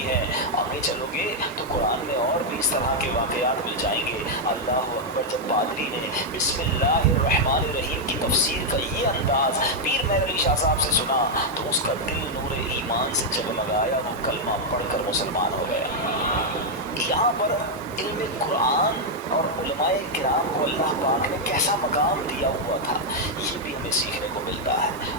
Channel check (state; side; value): normal; both; correlation -0.01